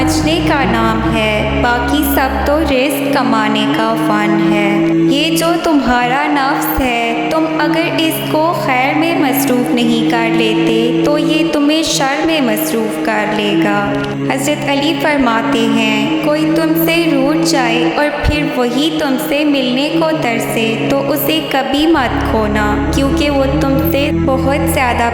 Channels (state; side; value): identical; both; correlation 1.00